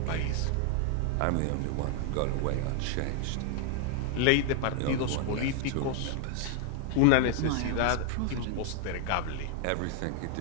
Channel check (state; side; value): different; both; correlation 0.00